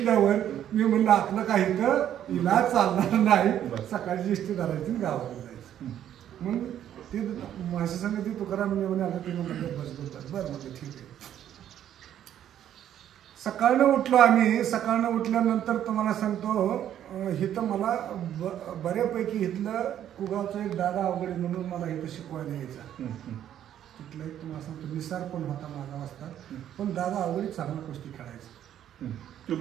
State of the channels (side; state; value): left; quieter; 10.7 dB